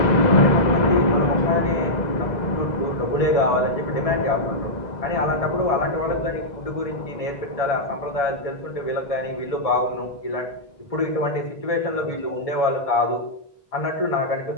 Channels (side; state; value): right; late; 1.7 ms